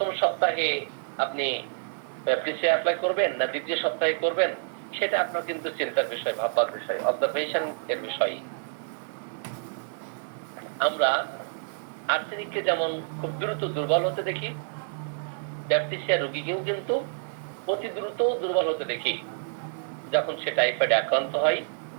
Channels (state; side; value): silent; left; 56 dB below the other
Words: সপ্তাহে আপনি ব্যাপটিসিয়া অ্যাপ্লাই করবেন না দ্বিতীয় সপ্তাহে করবেন, সেটা আপনার কিন্তু চিন্তার বিষয়, ভাববার বিষয়, অবজারভেশন এর বিষয়। আমরা আর্সেনিককে যেমন খুব দ্রুত দুর্বল হতে দেখি, ব্যাপটিসিয়া রোগীকেও কিন্তু অতি দ্রুত দুর্বল হতে দেখি। যখন সে টাইফয়েডে আক্রান্ত হয়,